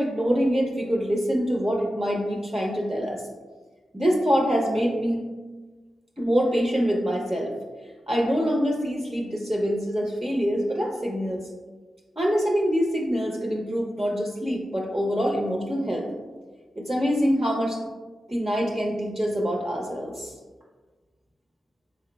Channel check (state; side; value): normal; both; correlation 0.92